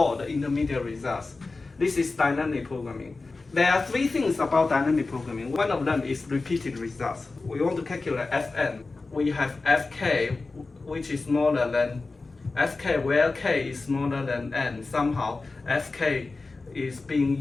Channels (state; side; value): quieter; right; 3.7 dB